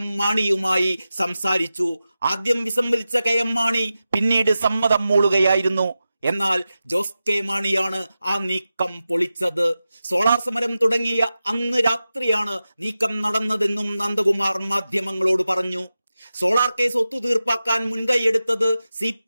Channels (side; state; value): both; inverted; correlation -0.93